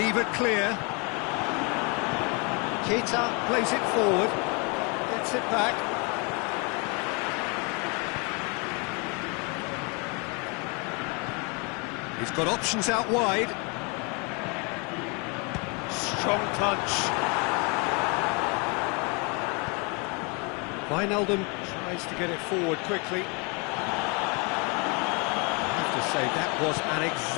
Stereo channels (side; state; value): right; quieter; 31.7 dB